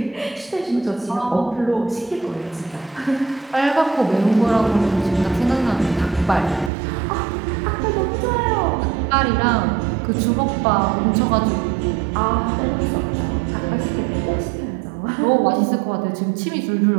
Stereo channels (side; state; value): left; drops out; at 6.7 s